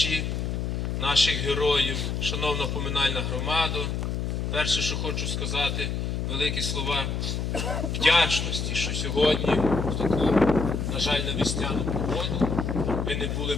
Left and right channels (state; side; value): noise; left; hum, 2 dB below the sound